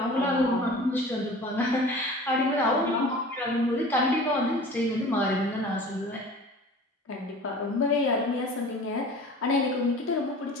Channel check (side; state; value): both; normal; correlation 0.41